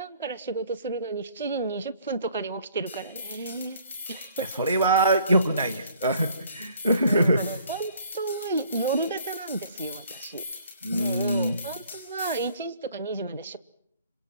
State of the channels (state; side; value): inverted; both; correlation -0.59